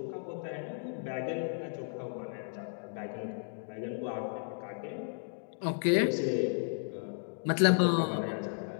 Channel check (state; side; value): silent; right; 55 dB below the other